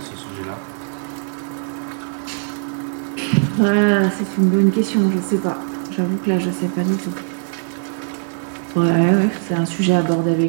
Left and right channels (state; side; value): silent; left; 66 dB below the other